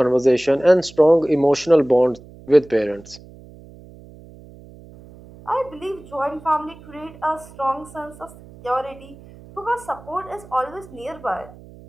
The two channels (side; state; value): right; noise; hum, 20 dB below the sound